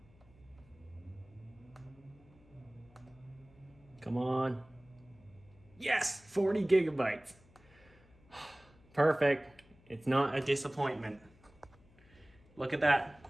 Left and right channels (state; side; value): noise; left; hum, 27 dB below the sound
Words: Come on. Yes, 40 gigabytes. Perfect. It's not a disappointment. Look at that.